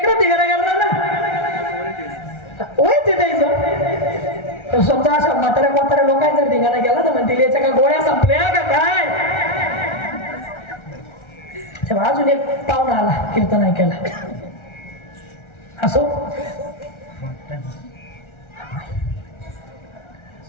धिंगाणा करणार ना होय ते द्यायचं समजा अशा म्हाताऱ्या लोकांनी जर धिंगाणा केला तर म्हणतील याच्या का गोळ्या संपल्या का काय तेव्हा अजून एक पाहुणा आला कीर्तन ऐकायला असो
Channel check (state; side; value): late; right; 1.3 ms